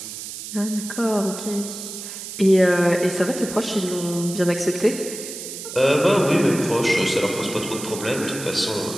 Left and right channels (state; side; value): noise; right; hiss, 9 dB below the sound